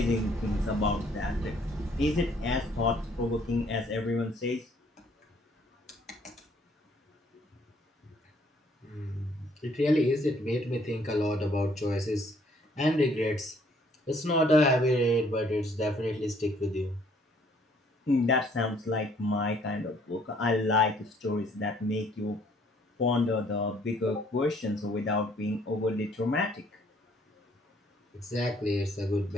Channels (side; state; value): both; normal; correlation 0.63